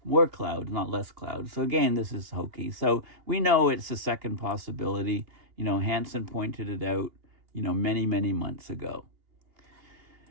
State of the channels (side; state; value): left; late; 2.8 ms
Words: more clouds, not less clouds. So again, this is hokey. So we know it's the second possibility. Hansen pointed it out, many, many months ago.